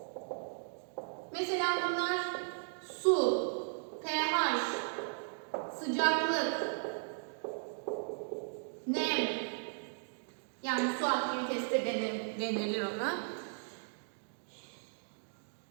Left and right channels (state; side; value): silent; left; digital silence